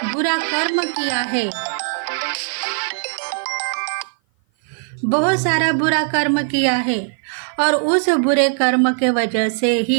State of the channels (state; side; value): silent; left; 56 dB below the other